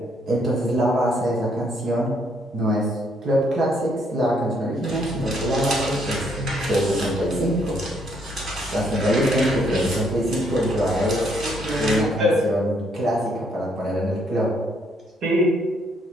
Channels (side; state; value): both; normal; correlation 0.70